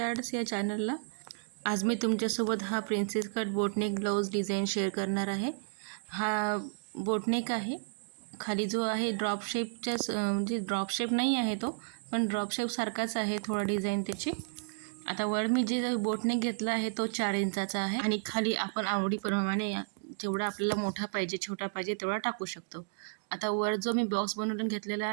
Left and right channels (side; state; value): left; silent; digital silence